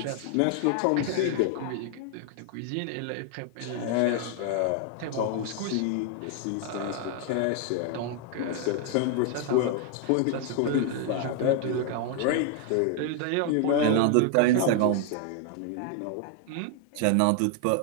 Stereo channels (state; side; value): different; both; correlation 0.00